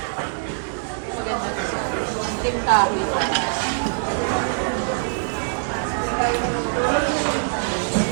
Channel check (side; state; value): left; silent; 62 dB below the other